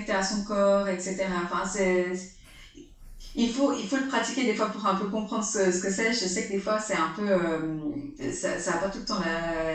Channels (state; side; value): identical; both; correlation 1.00